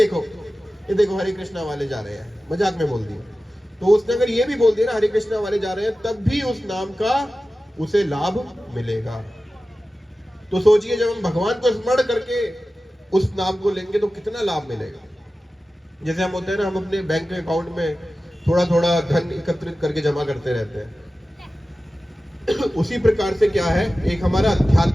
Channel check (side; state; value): both; normal; correlation 0.95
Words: ये देखो हरे कृष्णा वाले जा रहे हैं, मजाक में बोल दिया, तो उसने अगर ये भी बोल दिया ना हरे कृष्णा वाले जा रहे हैं, तब भी उस नाम का उसे लाभ मिलेगा। तो सोचिए जब हम भगवान को स्मरण करके उस नाम को लेंगे तो कितना लाभ मिलेगा। जैसे हम होते हैं ना, हम अपने बैंक अकाउंट में थोड़ा थोड़ा धन एकत्रित करके जमा करते रहते हैं, उसी प्रकार से क्या है, एक हमारा